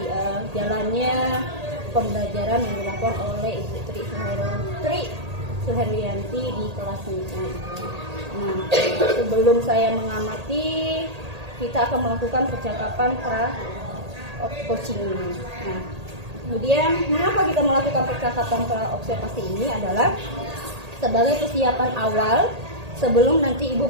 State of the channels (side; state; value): left; late; 1.8 ms